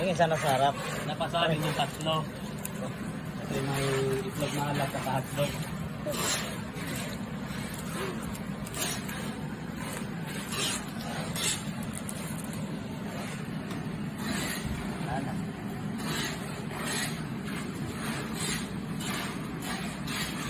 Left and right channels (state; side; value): identical; both; correlation 1.00